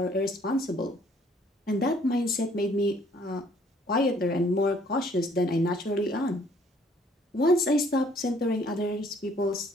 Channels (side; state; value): both; normal; correlation 0.61